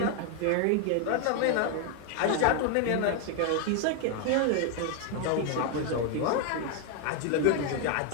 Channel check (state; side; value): different; both; correlation 0.01